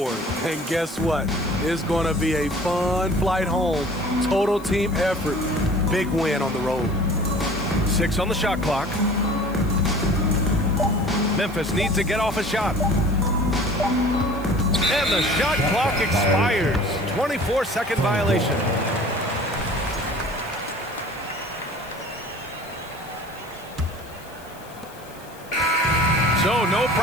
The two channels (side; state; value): left; noise; hiss, 23 dB below the sound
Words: And guess what? It's going to be a fun flight home. Total team effort. Big win on the road. 6 on the shot clock. Memphis needs to get off a shot. And the shot clock expires. 24-second violation. So no